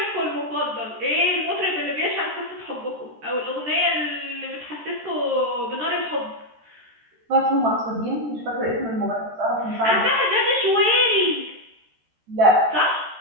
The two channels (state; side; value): late; left; 13 ms